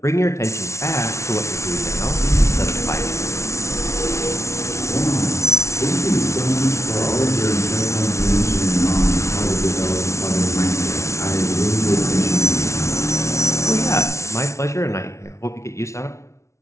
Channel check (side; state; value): right; late; 0.13 ms